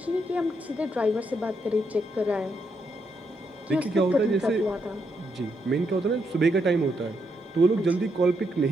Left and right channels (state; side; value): normal; both; correlation 0.79